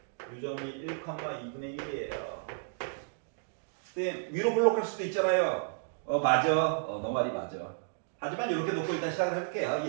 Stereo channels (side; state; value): left; silent; digital silence